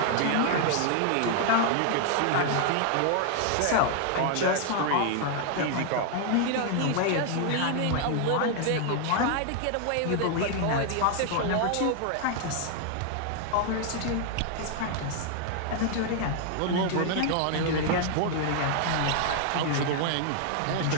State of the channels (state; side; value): different; both; correlation 0.00